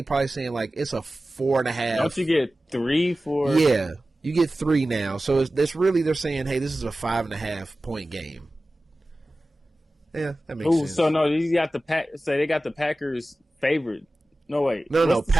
probably saying like it's a 4.5. Don't you get 3 for? Yeah, you get 3 now. So it's really they're saying, hey, this is a 5.5 point game. Yeah, that makes sense. So no, you got the they got the Packers favored. No wait, no.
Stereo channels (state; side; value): normal; both; correlation 0.96